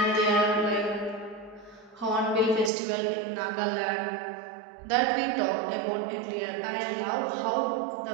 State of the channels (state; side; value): drops out; left; at 2.7 s